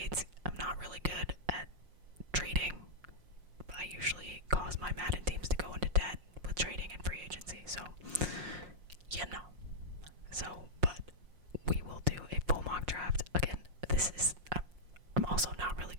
I'm not really good at trading. I usually cause my Madden teams to go into debt with trading and free agency, so but we will do a full mock draft. Again, I'm also not really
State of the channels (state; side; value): late; left; 5.5 ms